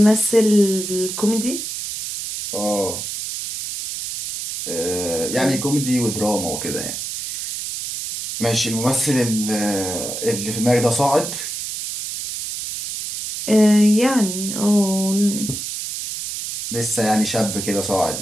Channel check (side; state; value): right; noise; hiss, 6 dB below the sound